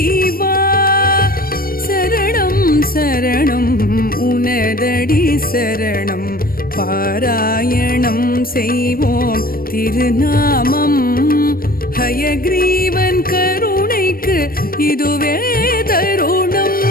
சரணம் சரணம் உனதடி சரணம் பாராயணம் செய்வோம் திருநாமம் ஹயக்ரீவன் கருணைக்கு இதுவே தருணம்.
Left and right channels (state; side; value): late; right; 0.43 ms